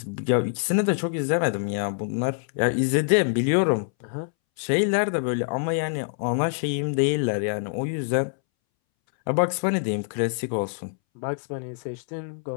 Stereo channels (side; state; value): right; silent; 62 dB below the other